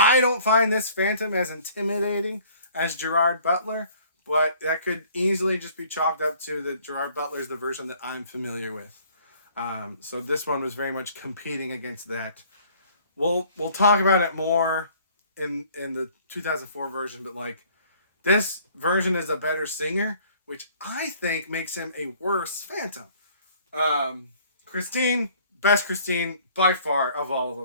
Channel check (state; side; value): inverted; both; correlation -0.56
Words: don't find this Phantom as intimidating as Gerard Butler, but that could easily just be chalked up to that Gerard Butler is the version that I'm familiar with. So this one was very much competing against that. We'll talk about it more in the 2004 version, but like this version is a better singer, which I think makes him a worse Phantom. Christine, best Christine by far of all of